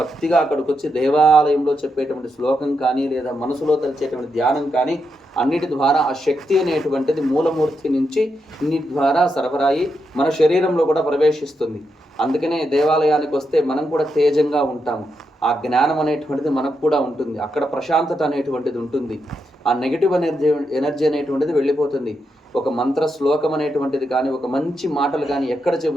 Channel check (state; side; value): normal; both; correlation 0.83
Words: అక్కడికి వచ్చి దేవాలయంలో చెప్పేటువంటి శ్లోకం కానీ లేదా మనసులో తెలిసేటువంటి ధ్యానం కానీ అన్నిటి ద్వారా ఆ శక్తి అనేటువంటిది మూలమూర్తి నుంచి ఇన్నిటి ద్వారా సరఫరాయి మన శరీరంలో కూడా ప్రవేశిస్తుంది. అందుకనే దేవాలయానికి వస్తే మనం కూడా తేజంగా ఉంటాము. ఆ జ్ఞానం అనేటువంటిది మనకు కూడా ఉంటుంది. అక్కడ ప్రశాంతత అనేటువంటిది ఉంటుంది. ఆ నెగిటివ్ ఎనర్జీ అనేటువంటిది వెళ్ళిపోతుంది. ఒక మంత్ర శ్లోకం అనేటువంటిది కానీ ఒక మంచి మాటలు కానీ ఎక్కడ